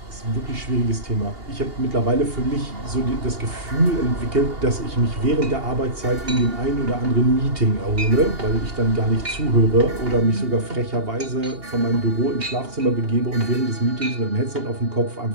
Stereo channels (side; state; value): left; late; 2.8 ms